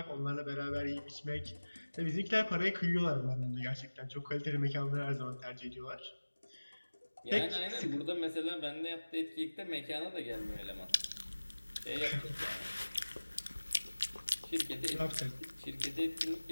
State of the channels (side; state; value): both; inverted; correlation -1.00